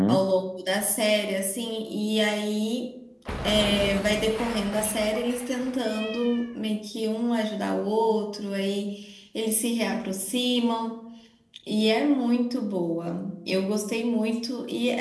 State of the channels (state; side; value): identical; both; correlation 1.00